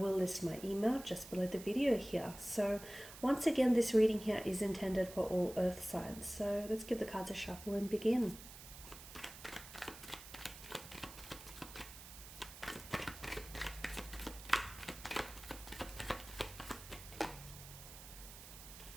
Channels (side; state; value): right; noise; hiss, 15 dB below the sound